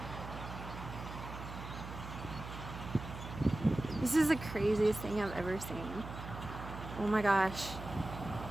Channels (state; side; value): noise; right; hum, 10 dB below the sound